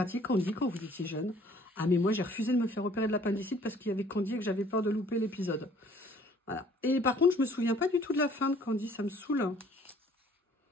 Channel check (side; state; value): both; normal; correlation 0.56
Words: Candy quand vous étiez jeune. Ah, mais moi, j'ai refusé de me faire opérer de l'appendicite parce qu'il y avait Candy et que j'avais peur de louper l'épisode. Voilà. Et par contre, je me souviens pas du tout de la fin de Candy. Ça me saoule.